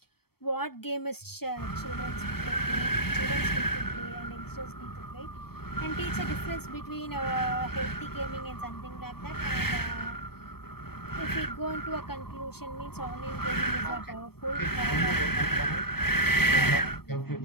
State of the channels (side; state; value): right; late; 0.96 ms